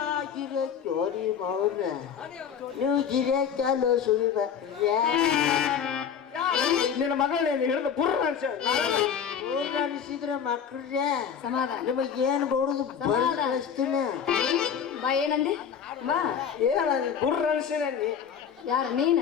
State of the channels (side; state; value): right; quieter; 7.6 dB